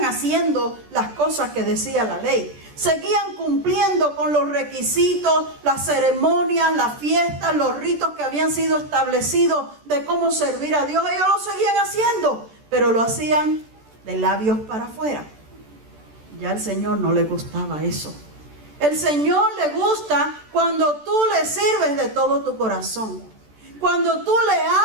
haciendo las cosas que decía la ley. Seguían cumpliendo con los requisitos, las ceremonias, las fiestas, los ritos que habían sido establecidos de cómo servir a Dios. Ellos lo seguían haciendo, pero lo hacían de labios para afuera. Ya al Señor no le gustaba eso. El Señor le gusta cuando tú le sirves de todo tu corazón. Cuando tú le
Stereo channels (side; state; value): left; late; 14 ms